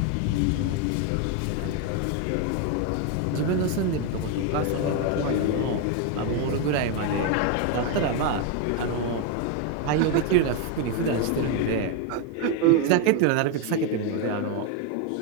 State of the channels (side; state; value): both; different; correlation 0.01